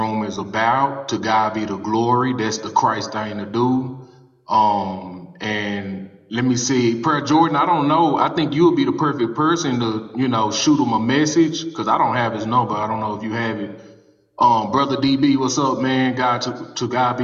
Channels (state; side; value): identical; both; correlation 1.00